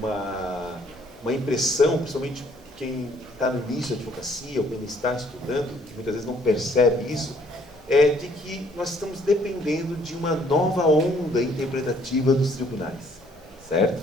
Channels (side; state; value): both; normal; correlation 0.63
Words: impressão, principalmente quem está no início da advocacia, ou quem está estudando, que muitas vezes não percebe isso, de que nós estamos dependendo de uma nova onda interpretativa dos tribunais, certo?